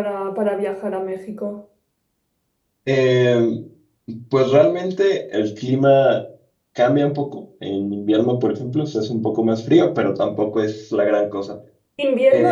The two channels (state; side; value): identical; both; correlation 1.00